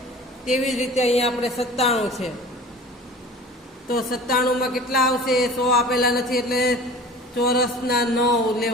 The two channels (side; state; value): both; normal; correlation 0.41